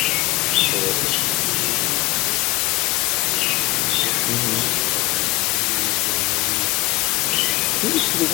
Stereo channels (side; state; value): right; quieter; 21.3 dB